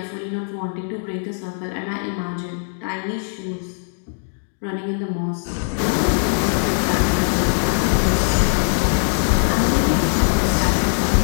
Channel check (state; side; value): silent; right; digital silence